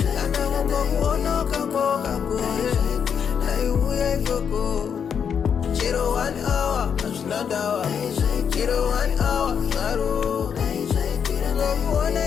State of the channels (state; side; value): quieter; right; 7.4 dB